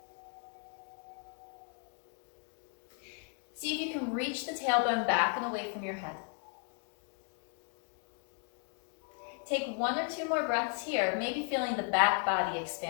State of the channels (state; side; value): quieter; right; 37.6 dB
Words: See if you can reach the tailbone back and away from your head. Take 1 or 2 more breaths here, maybe feeling the back body